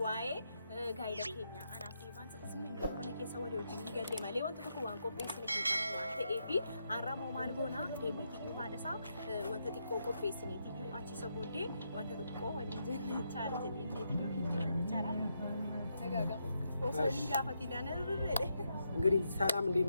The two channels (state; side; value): inverted; both; correlation -0.81